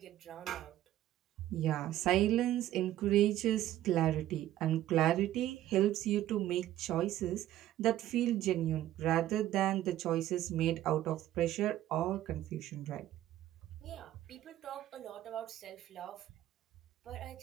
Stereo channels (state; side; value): quieter; left; 13.4 dB